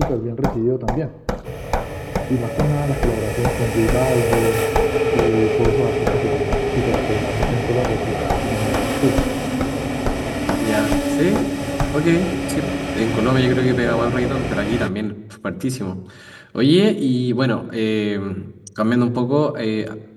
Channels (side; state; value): both; identical; correlation 1.00